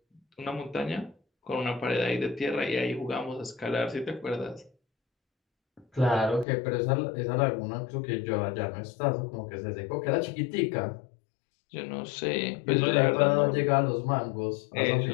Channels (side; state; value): right; drops out; at 6.5 s